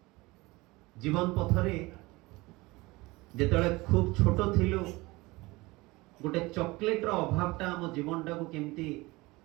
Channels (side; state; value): left; quieter; 22.0 dB